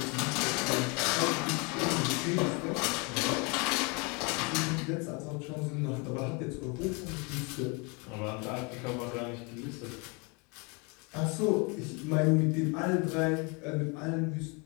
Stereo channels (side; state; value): right; quieter; 31.2 dB